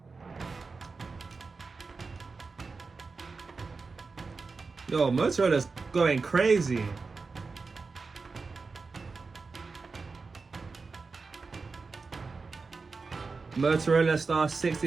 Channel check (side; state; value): left; quieter; 4.3 dB